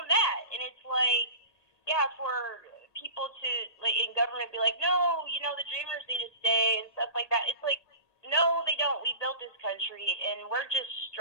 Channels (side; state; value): right; late; 1.8 ms